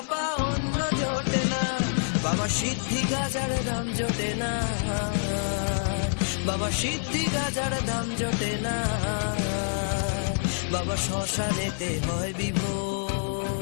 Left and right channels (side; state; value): right; silent; digital silence